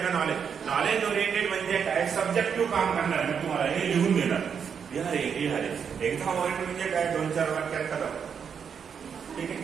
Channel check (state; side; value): quieter; left; 7.0 dB